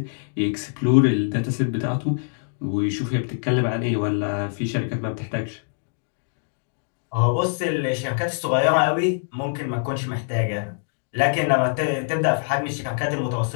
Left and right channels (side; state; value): right; silent; digital silence